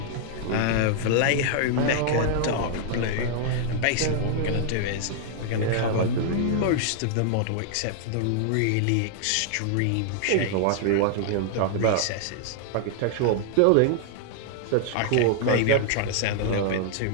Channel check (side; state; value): both; different; correlation -0.01